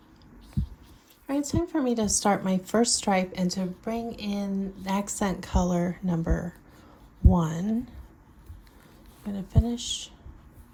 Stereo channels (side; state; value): both; identical; correlation 1.00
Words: All right, it's time for me to start my first stripe and to bring in accent color number 1. I'm going to finish,